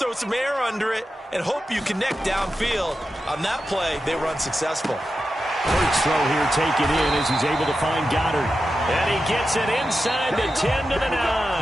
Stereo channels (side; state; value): both; normal; correlation 0.91